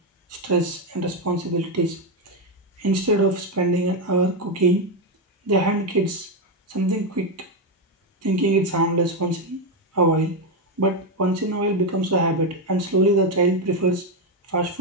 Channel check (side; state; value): both; normal; correlation 0.07